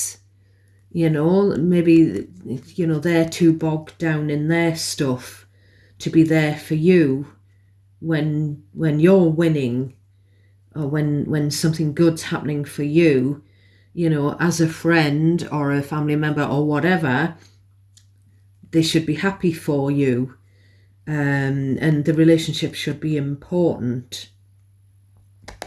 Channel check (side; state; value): both; identical; correlation 1.00